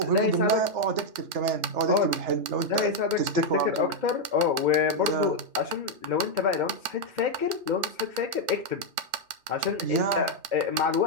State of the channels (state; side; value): late; left; 3.6 ms